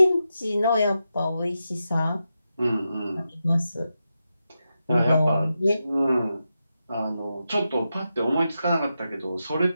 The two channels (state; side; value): inverted; both; correlation -0.88